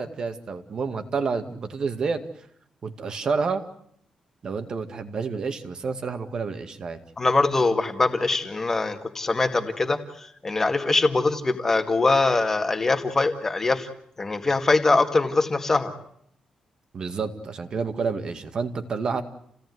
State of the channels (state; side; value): normal; both; correlation 0.91